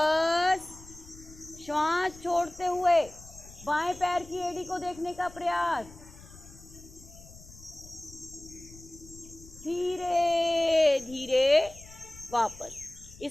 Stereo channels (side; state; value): left; noise; rumble, 19 dB below the sound